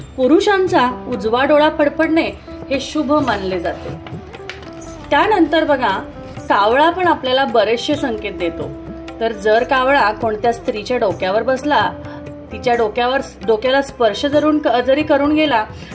पुरुषांचा उजवा डोळा फडफडणे हे शुभ मानले जाते। त्यानंतर बघा, कावळा पण आपल्याला बरेचसे संकेत देतो। तर जर कावळा कोणत्या स्त्रीच्या डोक्यावर बसला, तिच्या डोक्याला स्पर्श जरी करून गेला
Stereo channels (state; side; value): identical; both; correlation 1.00